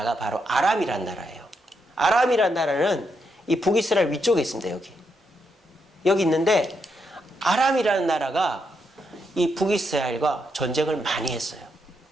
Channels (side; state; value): both; normal; correlation 0.80